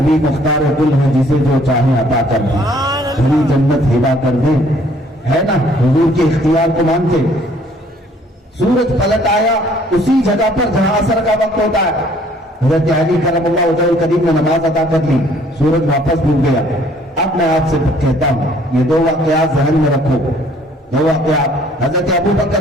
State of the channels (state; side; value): normal; both; correlation 0.60